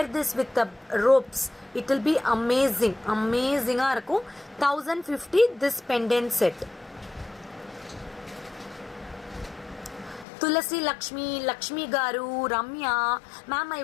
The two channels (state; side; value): drops out; right; at 10.2 s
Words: this with the ropes. It will be amazing. Amazing ah irukum. 1050 this pendant set. Tulasi Lakshmi garu, Ramya ma'am, I